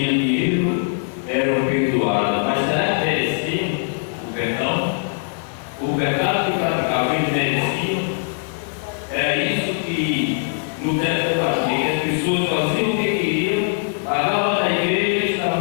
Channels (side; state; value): right; silent; digital silence